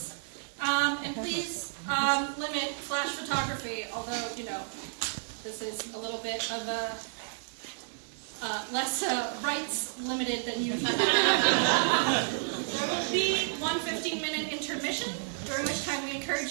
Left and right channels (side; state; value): left; silent; 57 dB below the other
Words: and please limit flash photography, although, you know, this is a little bit of a less rights limited than usual. There will be one 15-minute intermission, during which time we encourage